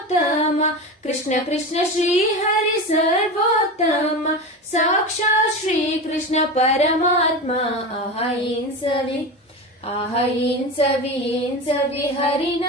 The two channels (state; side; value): normal; both; correlation 0.24